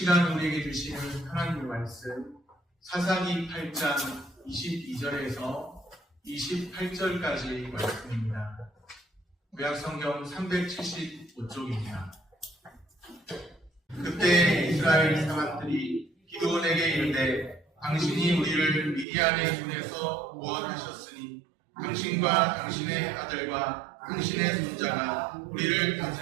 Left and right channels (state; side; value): drops out; left; at 19.1 s